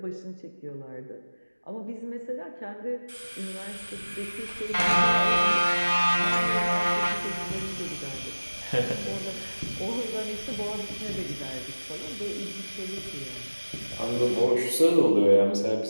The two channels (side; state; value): both; inverted; correlation -1.00